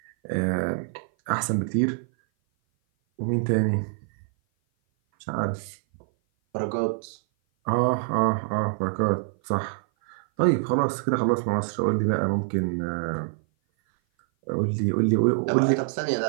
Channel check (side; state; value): left; silent; 57 dB below the other